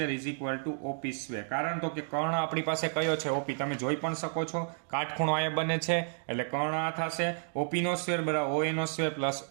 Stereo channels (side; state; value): left; silent; digital silence